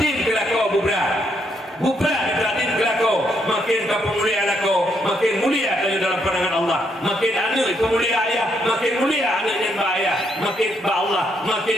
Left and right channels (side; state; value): both; normal; correlation 0.74